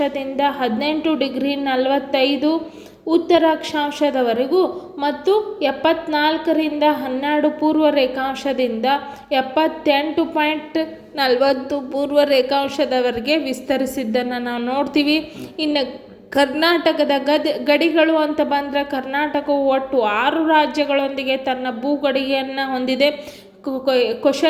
18 ಡಿಗ್ರಿ 45 ಉತ್ತರ ಅಕ್ಷಾಂಶದವರೆಗೂ ಮತ್ತು 74ರಿಂದ 12 ಪೂರ್ವ ರೇಖಾಂಶದಿಂದ 78.40 ಪೂರ್ವ ರೇಖಾಂಶದವರೆಗೆ ವಿಸ್ತರಿಸಿದ್ದನ್ನು ನಾವು ನೋಡ್ತೀವಿ. ಇನ್ನು ಕರ್ನಾಟಕದ ಗಡಿಗಳು ಅಂತ ಬಂದರೆ ಕರ್ನಾಟಕವು ಒಟ್ಟು 6 ರಾಜ್ಯಗಳೊಂದಿಗೆ ತನ್ನ ಭೂಗಡಿಗೆಯನ್ನು ಹೊಂದಿದೆ.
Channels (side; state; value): both; identical; correlation 1.00